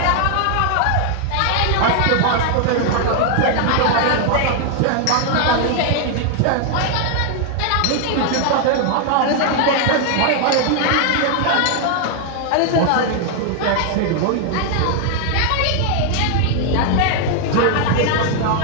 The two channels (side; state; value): both; different; correlation 0.00